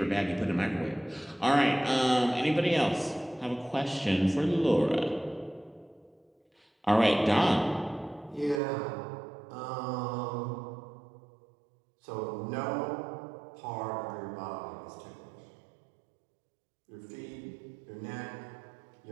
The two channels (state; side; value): drops out; left; at 8.6 s